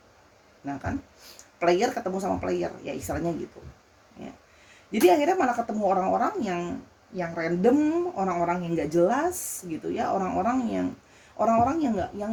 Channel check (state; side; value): identical; both; correlation 1.00